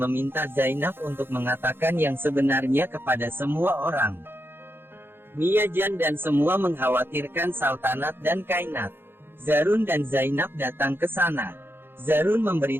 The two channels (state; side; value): late; left; 0.10 ms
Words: Zainab untuk mengatakan yang sebenarnya kepada semua orang. Miyajan dan semua mengkhawatirkan Sultanat dan Kainat. Zarun dan Zainab datang ke sana. Zarun